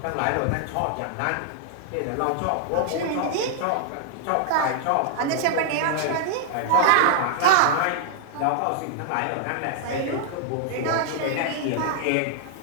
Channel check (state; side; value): different; both; correlation -0.01